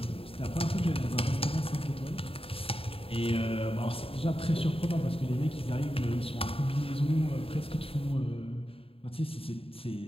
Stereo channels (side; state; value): right; late; 0.27 ms